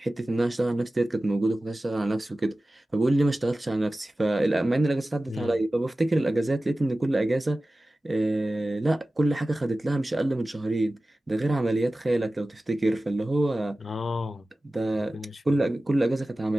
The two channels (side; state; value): both; normal; correlation 0.96